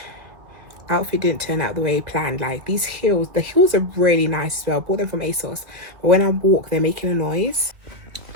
Outfit didn't turn out the way planned. Like, these heels, the heels are really nice as well. I bought them from ASOS, but when I walk, they're making a noise.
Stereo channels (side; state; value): left; late; 2.2 ms